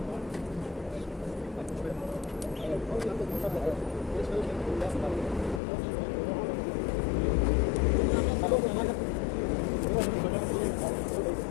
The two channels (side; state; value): right; drops out; at 5.6 s